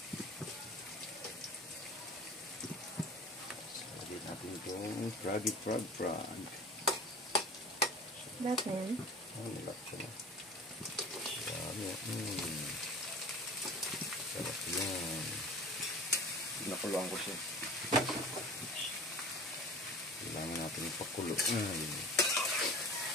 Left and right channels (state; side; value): normal; both; correlation 0.40